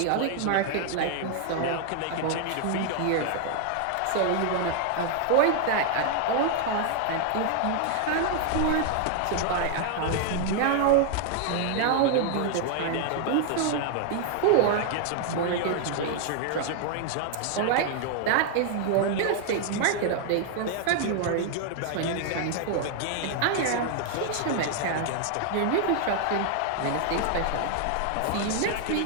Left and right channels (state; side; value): different; both; correlation 0.00